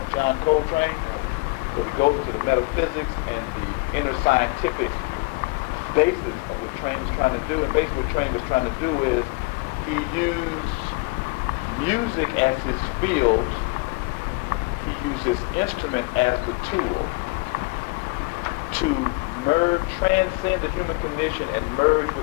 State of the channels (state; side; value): quieter; right; 26.3 dB